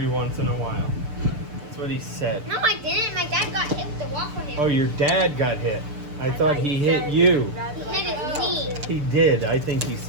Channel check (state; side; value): late; left; 6.8 ms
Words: once in a while. That's what he said. No, I didn't. My dad got hit with the waffle hammer. Oh, your dad got hit. I thought he hit you. He hit his knee. He did. I think he